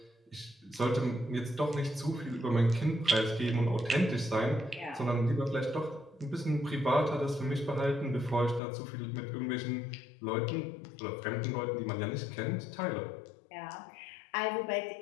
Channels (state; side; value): drops out; right; at 8.6 s